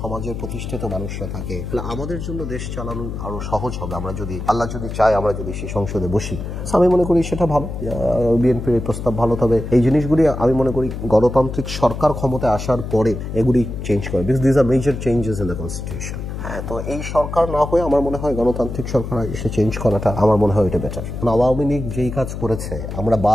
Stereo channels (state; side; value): noise; left; hum, 6 dB below the sound